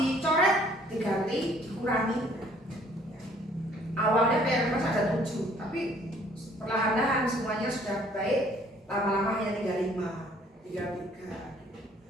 diganti, dikurangi. Awalnya PMS ada 7, tapi perlahan-lahan semuanya sudah baik. Lama-lama hanya tinggal 5, tinggal 3.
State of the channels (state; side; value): normal; both; correlation 0.59